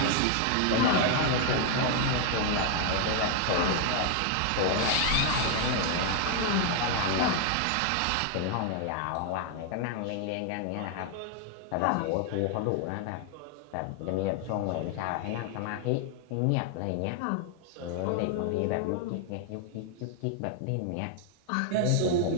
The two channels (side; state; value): both; different; correlation 0.00